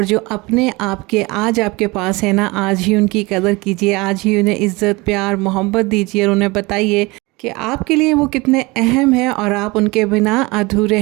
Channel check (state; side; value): quieter; left; 24.0 dB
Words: जो अपने आप के आज आपके पास है ना, आज ही उनकी कदर कीजिए, आज ही उन्हें इज़्ज़त प्यार मोहब्बत दीजिए और उन्हें बताइए कि आपके लिए वो कितने अहम हैं और आप उनके बिना अधूरे